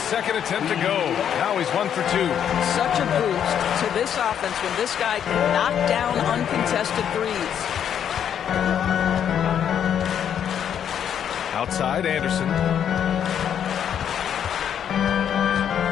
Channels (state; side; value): quieter; right; 9.0 dB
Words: second attempt to go. Now he's 1 for 2. Such a boost to this offense when this guy can knock down uncontested threes. Outside, Anderson.